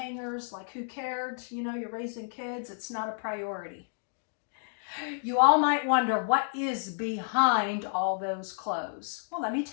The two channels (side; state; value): right; silent; digital silence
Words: Like, who cared? You know, you're raising kids. It's not a priority. You all might wonder, what is behind all those clothes? Well, let me